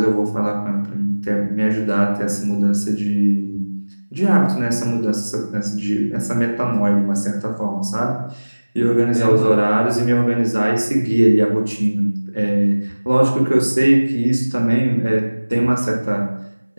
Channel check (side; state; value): both; inverted; correlation -1.00